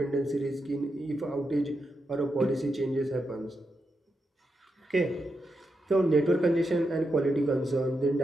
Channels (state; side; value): normal; both; correlation 0.85